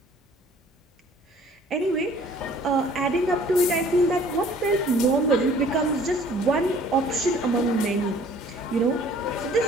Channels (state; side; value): normal; both; correlation 0.54